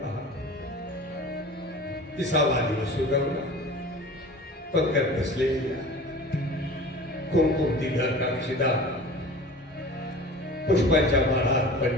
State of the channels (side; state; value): both; normal; correlation 0.39